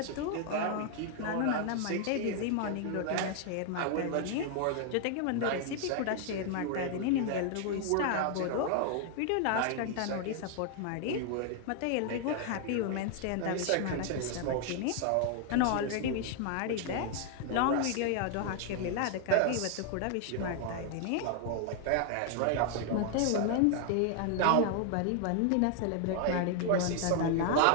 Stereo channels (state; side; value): different; both; correlation 0.00